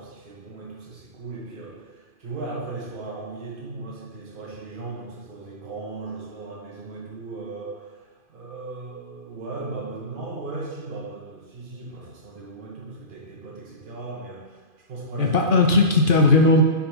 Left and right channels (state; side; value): late; left; 2.5 ms